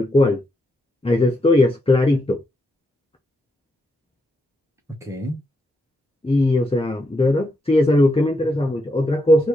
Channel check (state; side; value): normal; both; correlation 0.81